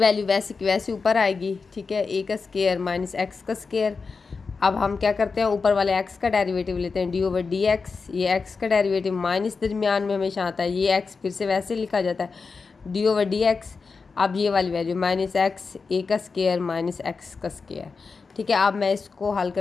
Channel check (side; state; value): right; quieter; 4.7 dB